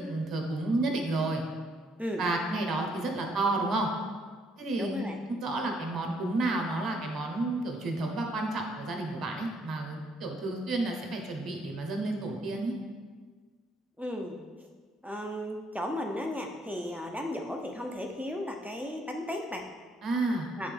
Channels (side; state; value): both; normal; correlation 0.69